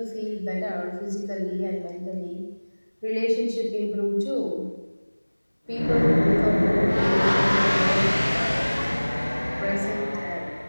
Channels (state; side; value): inverted; both; correlation -1.00